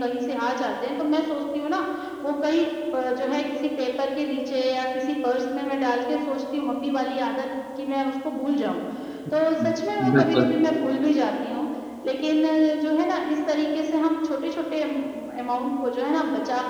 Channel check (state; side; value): identical; both; correlation 1.00